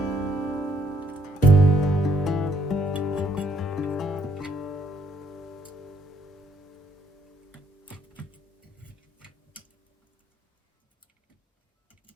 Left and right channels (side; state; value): both; normal; correlation 0.69